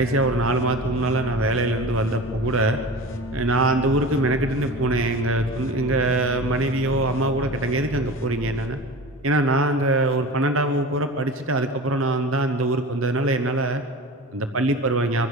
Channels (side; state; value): both; normal; correlation 0.34